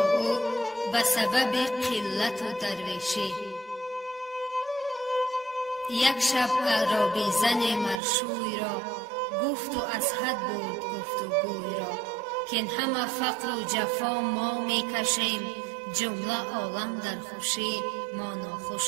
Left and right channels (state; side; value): drops out; left; at 8.0 s